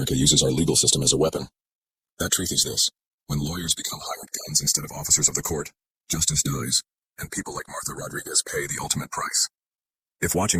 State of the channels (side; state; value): both; identical; correlation 1.00